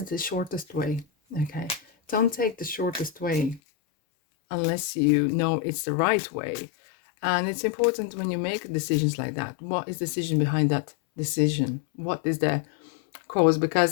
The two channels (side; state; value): right; drops out; at 3.6 s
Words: the shortest way. Okay, don't take the shortest way unless you know it's the right way. And it's important when you make decisions like that. What is the decision behind that decision? What is the cause?